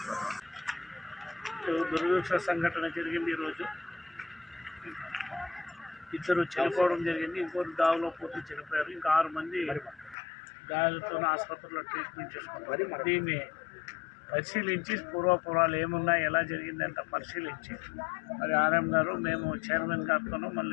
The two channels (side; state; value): right; drops out; at 10.2 s